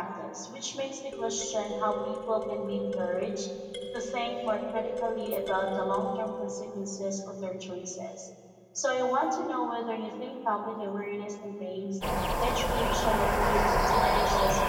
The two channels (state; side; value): identical; both; correlation 1.00